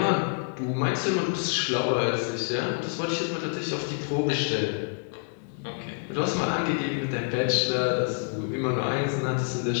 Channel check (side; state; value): right; silent; 60 dB below the other